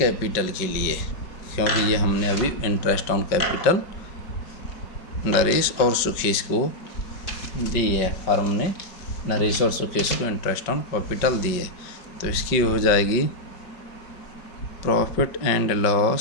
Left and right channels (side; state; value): right; late; 5.1 ms